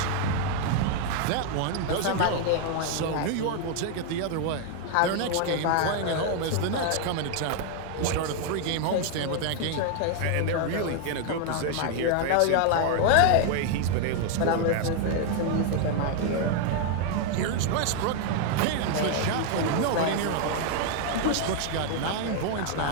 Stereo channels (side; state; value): both; different; correlation 0.00